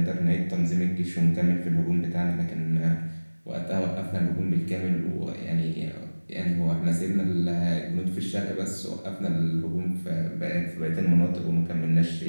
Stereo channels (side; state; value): both; inverted; correlation -1.00